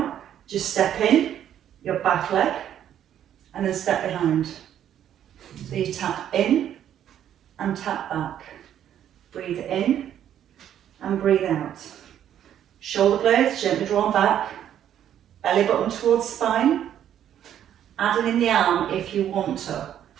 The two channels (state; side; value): quieter; left; 10.4 dB